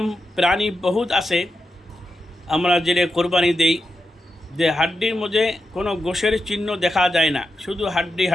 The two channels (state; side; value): normal; both; correlation 0.88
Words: প্রাণী বহুত আছে আমরা যেটা কোরবানি দেই, যে হাড্ডির মধ্যে কোনো গোশের চিহ্ন দেখা যায় না, শুধু